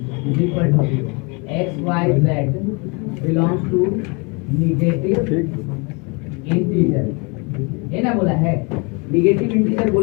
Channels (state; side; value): quieter; right; 31.2 dB